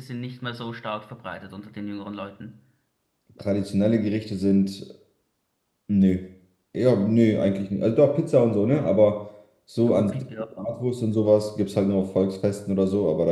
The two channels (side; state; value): both; identical; correlation 1.00